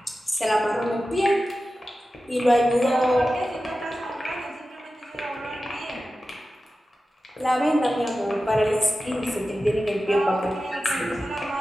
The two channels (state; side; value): normal; both; correlation 0.94